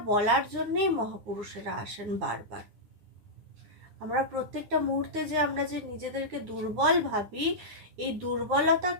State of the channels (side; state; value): left; late; 9.8 ms